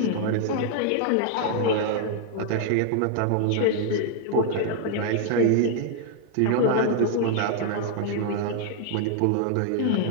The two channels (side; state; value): both; different; correlation 0.00